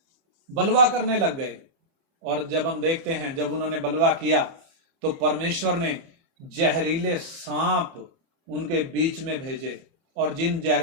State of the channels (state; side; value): late; left; 30 ms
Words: बलवा करने लग गए। और जब हम देखते हैं जब उन्होंने बलवा किया तो परमेश्वर ने जहरीले सांप उनके बीच में भेजे, और जिन